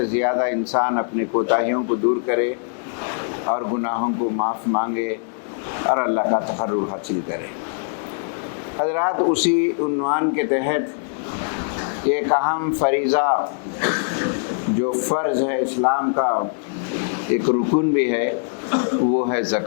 زیادہ انسان اپنے کوتاہیوں کو دور کرے اور گناہوں کو معاف مانگے اور اللہ کا تقرب حاصل کرے۔ حضرات، اسی عنوان کے تحت ایک اہم فریضہ جو فرض ہے اسلام کا، ایک رکن بھی ہے، وہ ہے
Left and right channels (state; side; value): silent; right; 64 dB below the other